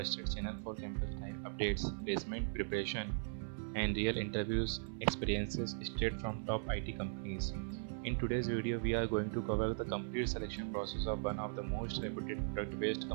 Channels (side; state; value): left; silent; 52 dB below the other